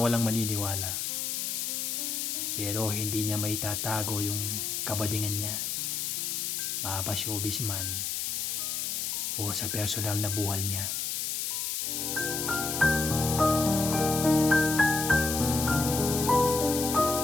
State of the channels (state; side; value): noise; left; hiss, 1 dB below the sound